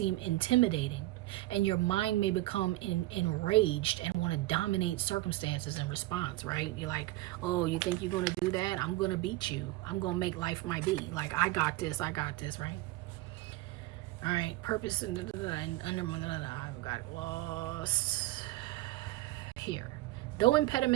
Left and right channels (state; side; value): quieter; left; 18.3 dB